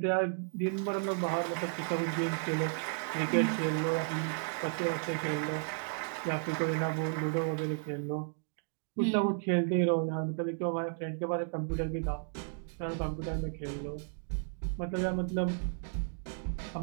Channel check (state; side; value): silent; left; 55 dB below the other